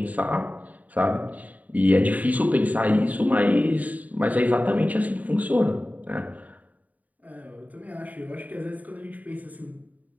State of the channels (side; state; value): left; late; 0.074 ms